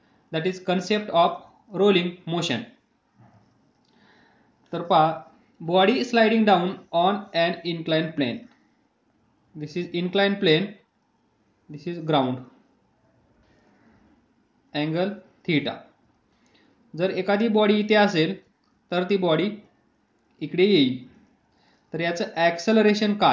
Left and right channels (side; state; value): both; identical; correlation 1.00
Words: that is concept of rolling motion. तर पहा, body sliding down on an inclined plane. This is inclined plane, this is ground, angle theta. जर एखादी बॉडी इथे असेल तर ती बॉडी इकडे येईल. तर याचं ॲक्सेलरेशन